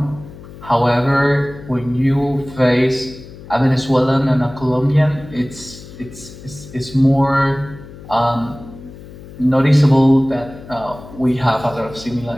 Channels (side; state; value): left; noise; hum, 17 dB below the sound